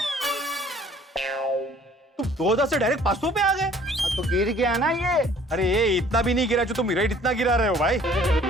तुम 2000 से डायरेक्ट 500 पे आ गए? तो गिर गया ना ये। अरे ये इतना भी नहीं गिरा जो तुम रेट इतना गिरा रहे हो भाई।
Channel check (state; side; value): normal; both; correlation 0.55